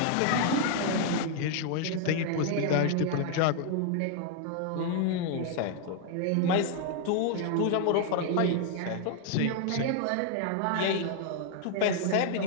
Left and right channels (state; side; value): different; both; correlation 0.00